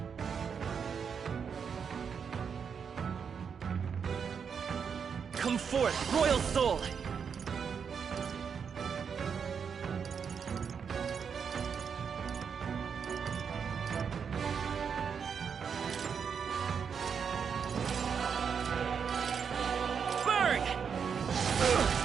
Come forth, royal soul! Burn!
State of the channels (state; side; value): quieter; left; 6.7 dB